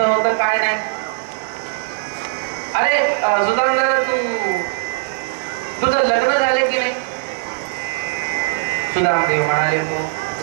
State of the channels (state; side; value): silent; left; 58 dB below the other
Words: होतं काय नाही. अरे सुदामदादा तुझं लग्न झाले की नाही. सुदामदेव म्हणाले हो